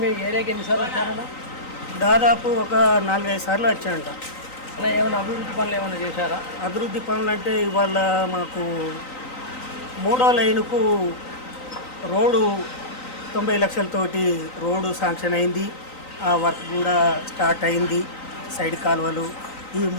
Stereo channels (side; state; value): right; late; 3.9 ms